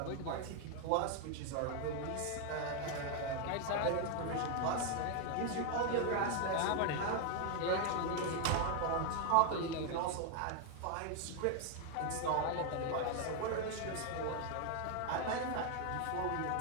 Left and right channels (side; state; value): both; different; correlation 0.00